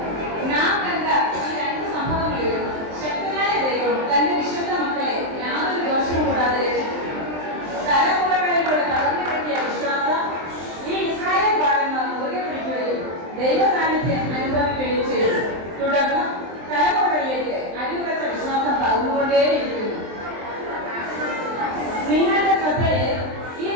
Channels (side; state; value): left; late; 23 ms